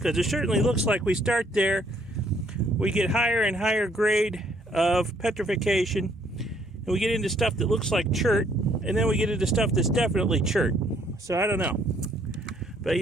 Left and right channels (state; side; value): normal; both; correlation 0.66